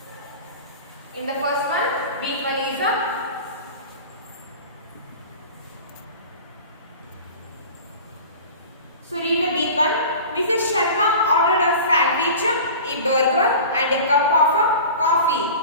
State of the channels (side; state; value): both; inverted; correlation -0.37